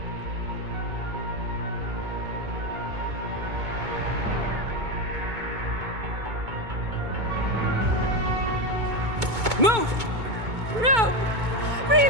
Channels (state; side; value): late; left; 2.2 ms